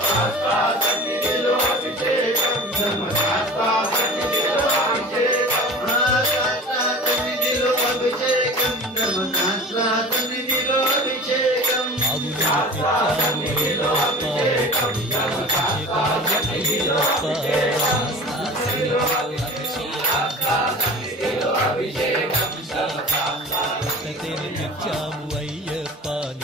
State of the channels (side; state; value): both; normal; correlation 0.37